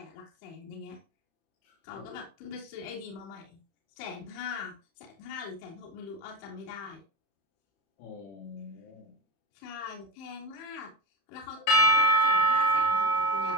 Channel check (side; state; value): right; late; 31 ms